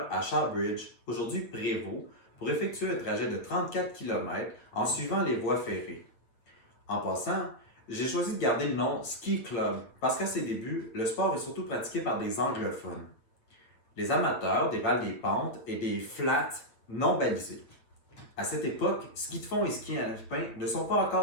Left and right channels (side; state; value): right; late; 8.7 ms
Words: à Shawbridge, aujourd'hui Prévost, pour effectuer un trajet de 34 km en suivant les voies ferrées. En passant, j'ai choisi de garder le nom Ski Club parce qu'à ses débuts, le sport est surtout pratiqué par des anglophones. Les amateurs dévalent des pentes et des flats non balisés. À cette époque, ski de fond et ski alpin ne sont pas